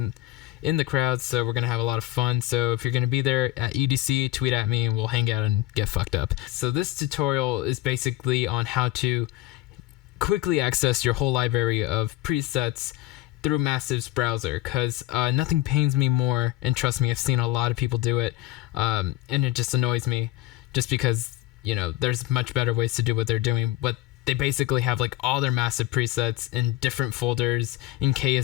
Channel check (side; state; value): right; quieter; 16.3 dB